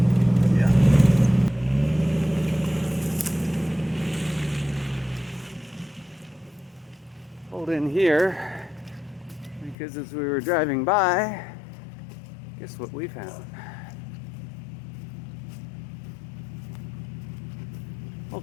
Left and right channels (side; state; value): right; drops out; at 9.8 s